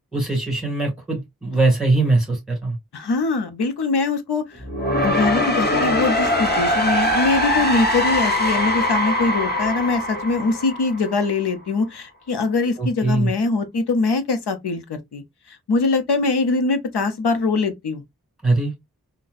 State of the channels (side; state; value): both; normal; correlation 0.31